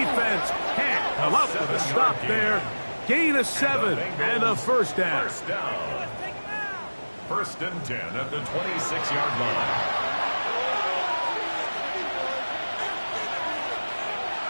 can't come up with a stop there. Gain of 7 and a 1st down. 1st and 10 at the 26-yard line.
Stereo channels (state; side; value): inverted; both; correlation -1.00